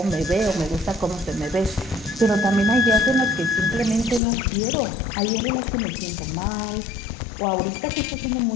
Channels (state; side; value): drops out; right; at 4.2 s